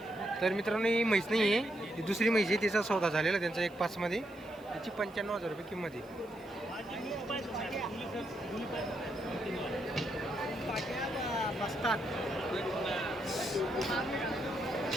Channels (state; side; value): noise; right; hiss, 28 dB below the sound